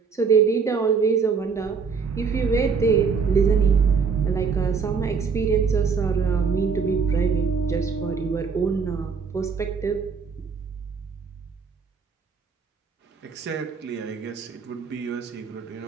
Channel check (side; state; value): left; quieter; 5.6 dB